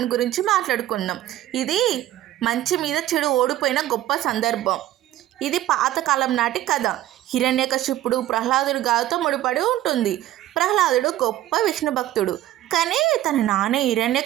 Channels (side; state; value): left; quieter; 13.8 dB